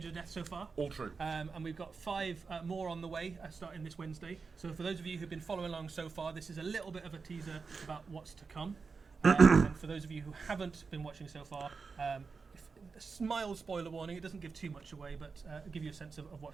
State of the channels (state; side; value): quieter; left; 4.8 dB